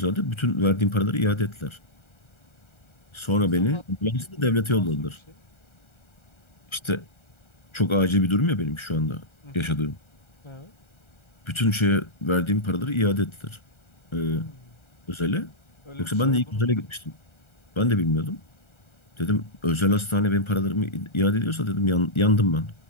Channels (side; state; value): right; late; 1.3 ms